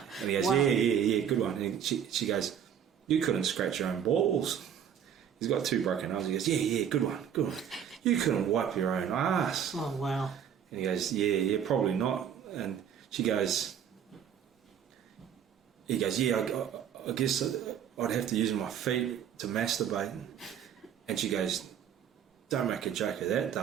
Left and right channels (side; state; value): left; quieter; 8.7 dB